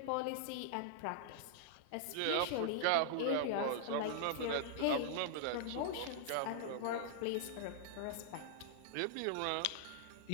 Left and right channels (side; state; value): both; different; correlation -0.01